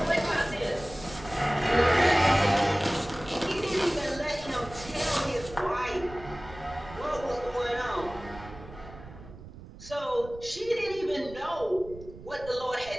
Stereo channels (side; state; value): right; noise; rumble, 16 dB below the sound